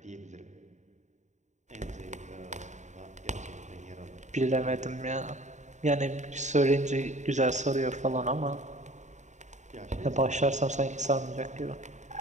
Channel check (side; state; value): left; late; 0.34 ms